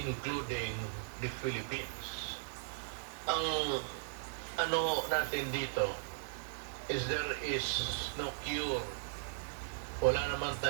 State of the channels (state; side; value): silent; left; digital silence